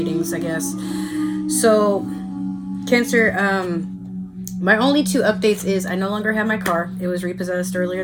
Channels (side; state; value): both; identical; correlation 1.00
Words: I guess. So, Cancer, my only two updates is I no longer have my car. It was repossessed earlier